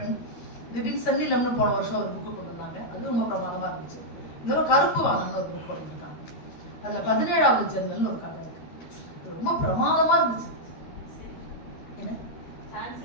திடீர்னு சென்னிலம்னு போன வருஷம் ஒரு புக்கு கொண்டு வந்தாங்க. அது ரொம்ப பிரமாதமா இருந்துச்சு. இன்னொரு கருப்பு வாங்கன்னு ஒரு புக் கொண்டு இருக்காங்க. அதுல 17வது ஜன்னல்னு ஒரு கதை இருக்கு. ரொம்ப பிரமாதமா இருந்துச்சு. என்ன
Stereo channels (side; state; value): right; late; 13 ms